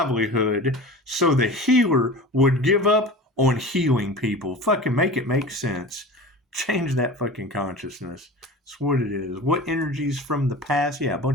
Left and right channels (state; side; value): normal; both; correlation 0.35